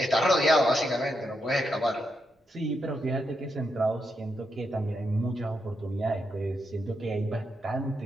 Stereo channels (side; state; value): both; normal; correlation 0.83